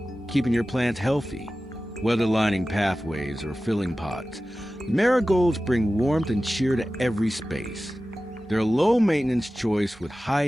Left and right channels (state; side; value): normal; both; correlation 0.95